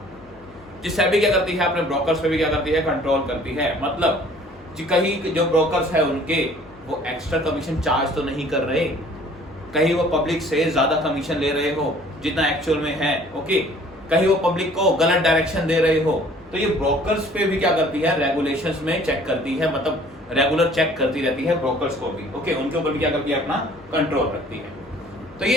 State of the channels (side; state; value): both; normal; correlation 0.53